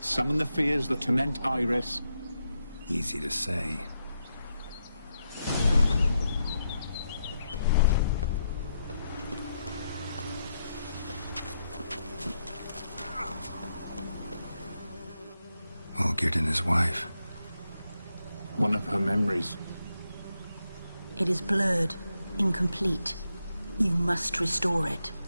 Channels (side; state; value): both; inverted; correlation -0.83